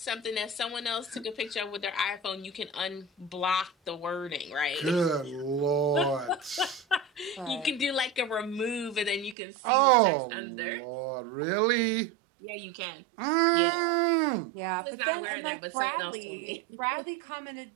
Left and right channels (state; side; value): drops out; left; at 9.3 s